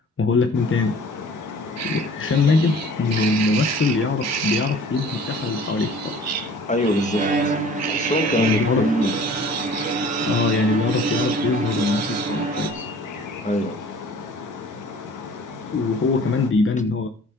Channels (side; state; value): both; normal; correlation 0.48